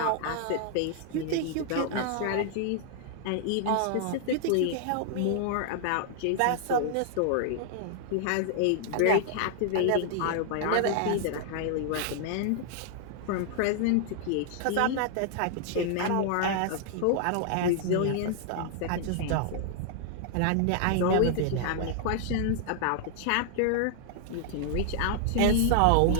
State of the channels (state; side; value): different; both; correlation -0.01